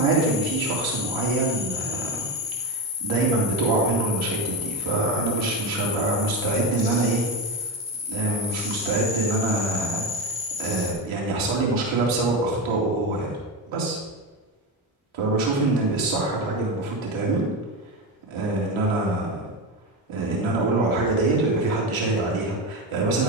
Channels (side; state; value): both; normal; correlation 0.17